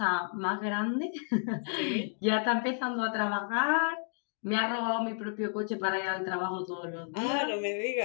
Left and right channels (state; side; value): silent; right; 57 dB below the other